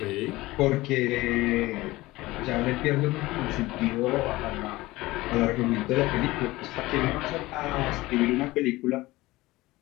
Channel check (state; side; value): quieter; right; 19.3 dB